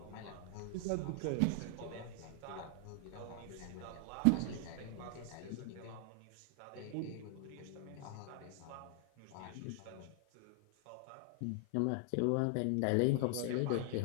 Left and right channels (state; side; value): different; both; correlation 0.00